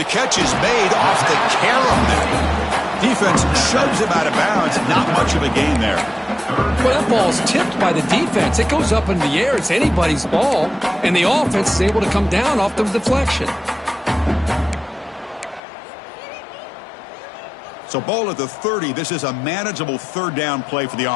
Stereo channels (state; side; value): drops out; right; at 15.6 s